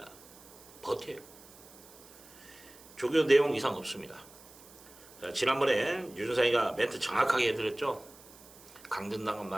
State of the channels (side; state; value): right; noise; hiss, 21 dB below the sound